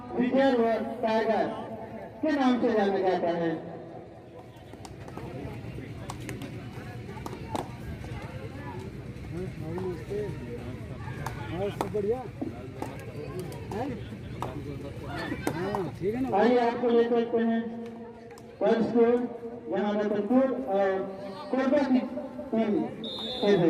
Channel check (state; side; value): identical; both; correlation 1.00